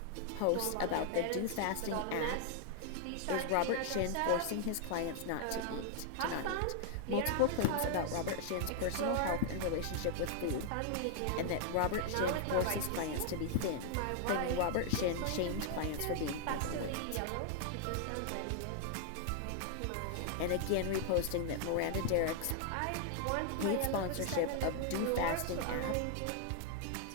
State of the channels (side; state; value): both; different; correlation 0.00